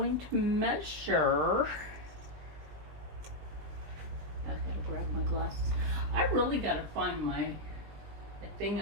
to measure. I gotta grab my glasses. I really gotta find my thing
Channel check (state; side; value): late; left; 20 ms